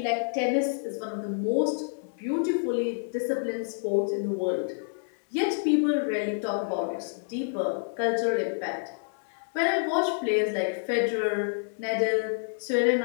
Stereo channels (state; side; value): silent; right; 59 dB below the other